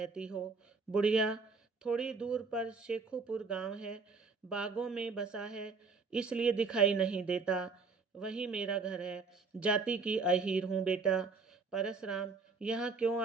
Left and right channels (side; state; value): left; quieter; 4.5 dB